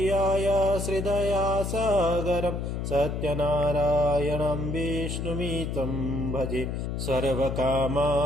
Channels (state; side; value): noise; left; hum, 3 dB below the sound